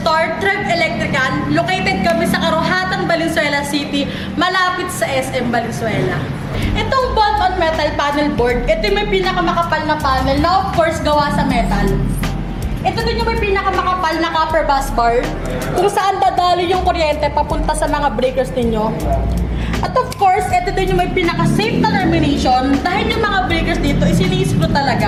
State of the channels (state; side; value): identical; both; correlation 1.00